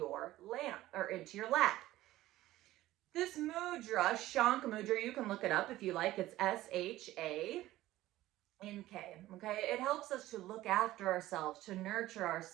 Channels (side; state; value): left; quieter; 15.8 dB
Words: lap. This mudra, Shank Mudra, you can look it up if you like. It's SHANK. Okay, it helps us to look after ourselves, to nurture